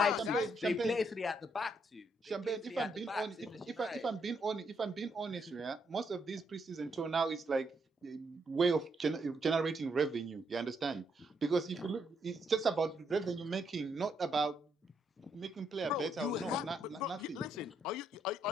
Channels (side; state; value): both; normal; correlation 0.76